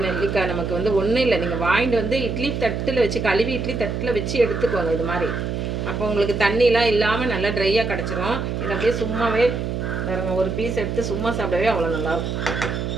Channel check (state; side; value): noise; right; hum, 3 dB below the sound